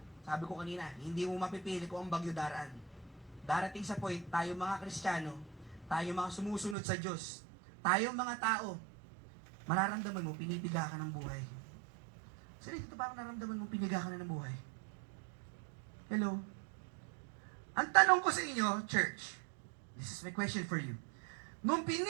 sabi ko kanina, hindi mo mapipili kung ang bagyo daraan. Darating sa point, tayo mga Kristiyano, tayo mga sumusunod sa Diyos, tayo mga tao, mararamdaman mo, pinipiga ka ng buhay. Sino dito parang nararamdaman mo, piniga ka na ng buhay? Hello? Ang tanong ko sa inyo, church, this is my question for you. Nung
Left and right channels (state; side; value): drops out; left; at 6.8 s